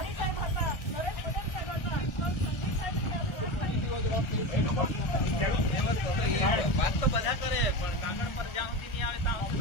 સાહેબ હતા, નરેશ પટેલ સાહેબ હતા, સંદીપ સાહેબ હતા. વાત તો બધા કરે પણ કાગળ પર જ્યાં સુધી નહીં આવે ત્યાં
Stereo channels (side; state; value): right; late; 1.4 ms